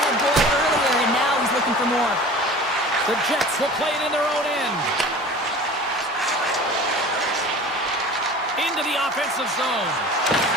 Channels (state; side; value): normal; both; correlation 0.40